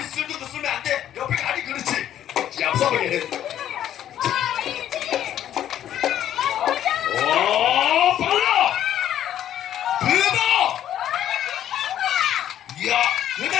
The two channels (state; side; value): quieter; right; 11.2 dB